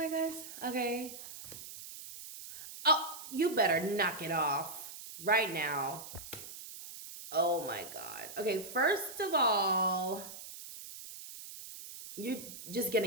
gosh. Okay. Oh, you better knock it off right now. Oh my god. Okay, first of all, you're just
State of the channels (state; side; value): noise; right; hiss, 12 dB below the sound